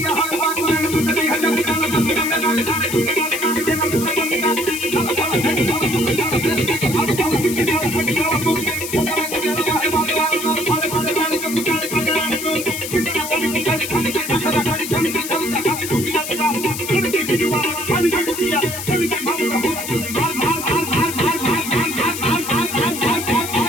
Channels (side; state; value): left; noise; hiss, 7 dB below the sound